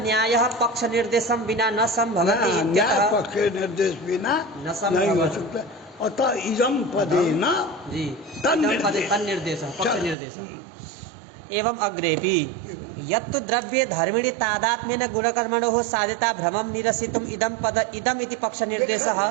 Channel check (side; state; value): left; drops out; at 10.2 s